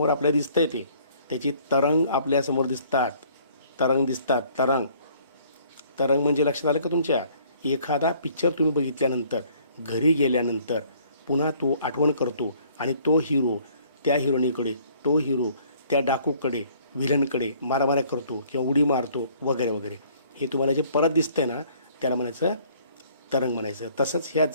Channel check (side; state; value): both; inverted; correlation -0.59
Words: आपल्याला दिसतंय, त्याची तरंग आपल्यासमोर दिसतात. तरंग म्हणजे लक्षात आलं का तुमच्या? एखादा पिक्चर तुम्ही बघितल्यानंतर घरी गेल्यानंतर पुन्हा तो आठवण करतो आणि तो हिरो त्या हिरोईनीकडे, तो हिरो त्या डाकूकडे, व्हिलनकडे मारामाऱ्या करतो किंवा उडी मारतो वगैरे वगैरे. हे तुम्हाला जे परत दिसतंय ना, त्याला म्हणायचं तरंग म्हणायचं. तसंच ह्या